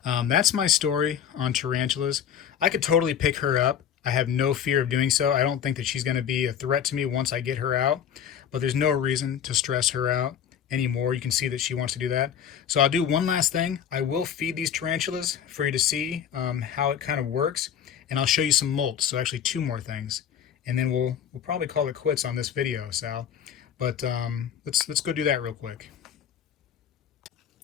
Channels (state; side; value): quieter; right; 8.8 dB